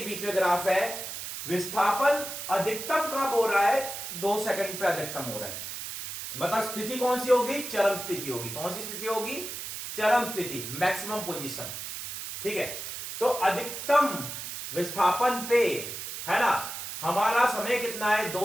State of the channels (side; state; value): right; noise; hiss, 7 dB below the sound